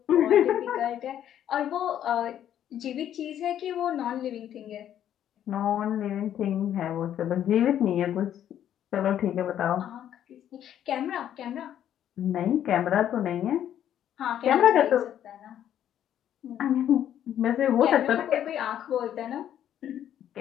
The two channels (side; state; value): right; quieter; 10.6 dB